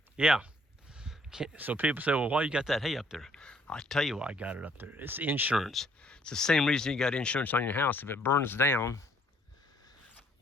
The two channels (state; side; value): normal; both; correlation 0.65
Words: yeah. So people say, well, why you got that hay up there? I'll tell you why I got it up there. It's insurance. It's the same reason you got insurance on your house. If it burns down,